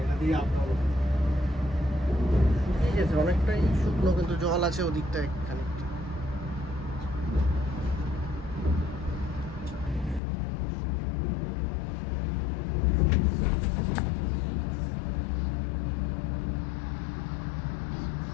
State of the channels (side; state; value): right; drops out; at 10.2 s